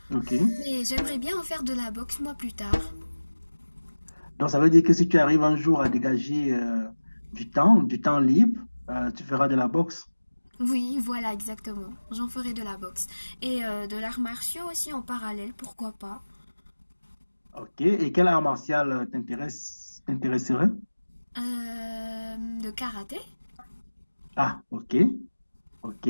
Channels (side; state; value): both; inverted; correlation -1.00